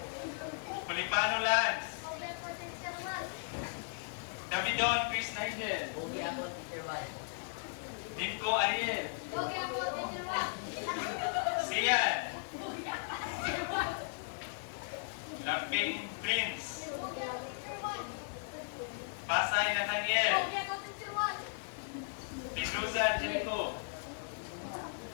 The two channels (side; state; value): right; silent; digital silence